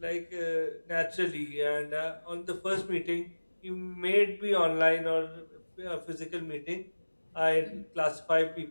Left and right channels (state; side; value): inverted; both; correlation -1.00